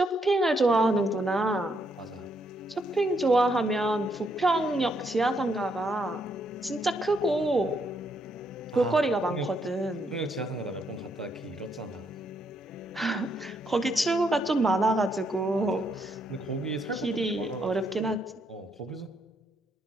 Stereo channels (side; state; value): both; normal; correlation 0.75